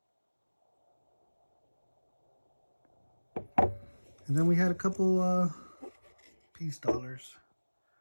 And then we had a couple piece dollars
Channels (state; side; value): inverted; both; correlation -1.00